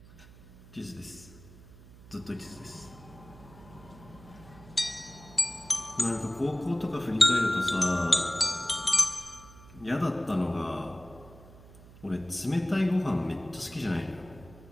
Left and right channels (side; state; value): right; noise; hum, 20 dB below the sound